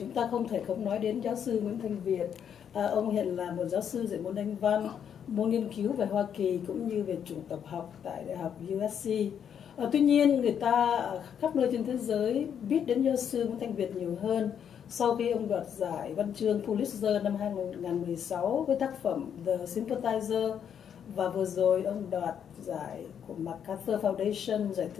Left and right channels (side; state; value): right; quieter; 8.4 dB